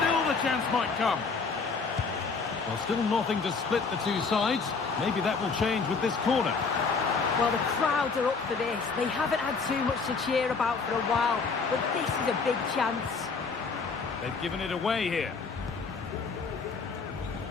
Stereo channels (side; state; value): right; quieter; 4.8 dB